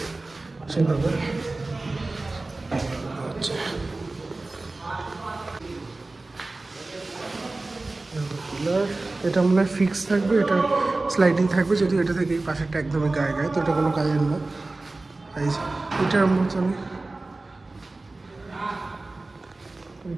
সেভাবে। আচ্ছা এটা মনে হয় ফিক্স থাকবে, এটা স্লাইডিং থাকবে, যদি এটা থেকে এই পাশেরটা একদমই গায়ে গায়ে, তো এটা কোনো কাজের না। এই যে এটার মতনই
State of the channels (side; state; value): left; quieter; 3.2 dB